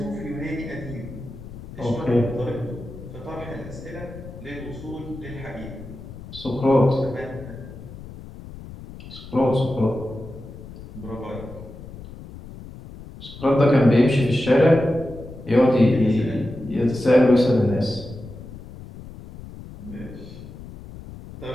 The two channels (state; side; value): noise; left; rumble, 14 dB below the sound